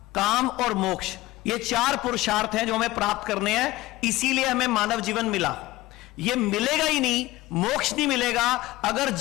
काम और मोक्ष, ये 4 पुरुषार्थ हैं जो हमें प्राप्त करने हैं। इसीलिए हमें मानव जीवन मिला। ये मिलेगा ही नहीं, मोक्ष नहीं मिलेगा अगर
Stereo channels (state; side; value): quieter; right; 18.1 dB